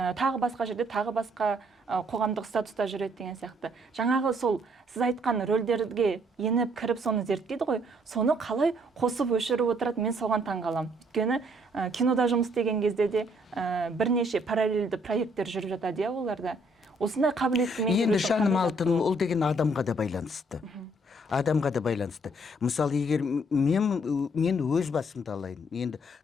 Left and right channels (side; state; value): both; normal; correlation 0.66